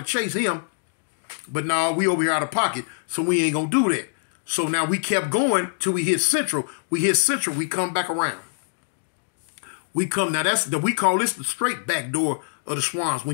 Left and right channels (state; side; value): silent; right; digital silence